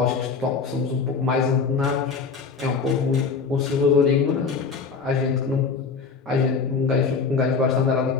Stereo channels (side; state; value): right; quieter; 5.1 dB